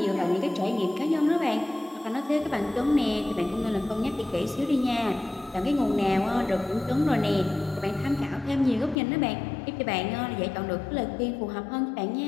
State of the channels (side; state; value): right; drops out; at 9.0 s